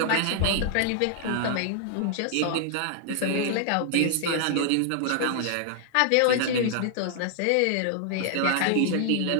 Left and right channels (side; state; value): both; different; correlation 0.00